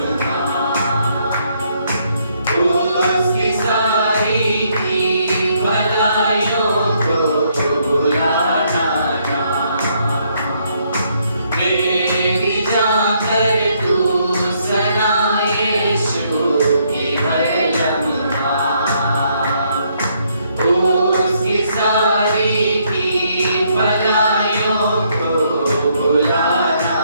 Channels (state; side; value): inverted; both; correlation -0.71